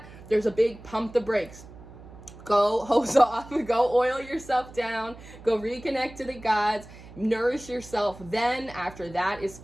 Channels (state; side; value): noise; right; hum, 18 dB below the sound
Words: There's a big pump the brakes. Go hose off, go oil yourself down, go reconnect to the gods, nourish yourself. Then after that is